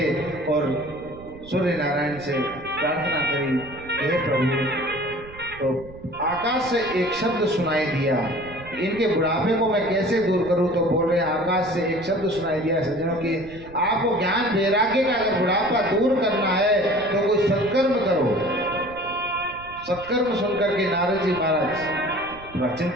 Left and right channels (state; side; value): noise; right; rumble, 18 dB below the sound